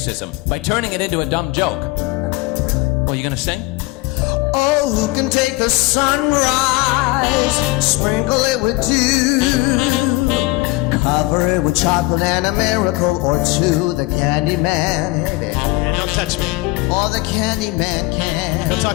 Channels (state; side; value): quieter; right; 21.8 dB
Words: by turning it into a dumb joke. Well, you gonna sing? Oh, who can take the sunrise, sprinkle it with dew, cover it with chocolate and a miracle or two. The candy man, Yeah, don't touch me. oh, the candy man can. Go